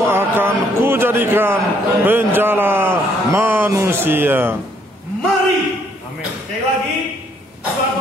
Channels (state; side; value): normal; both; correlation 0.68